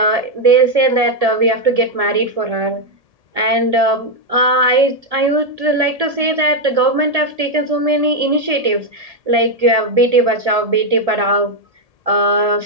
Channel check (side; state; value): left; late; 1.7 ms